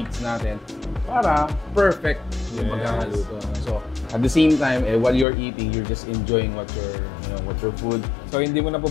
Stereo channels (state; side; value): drops out; right; at 5.2 s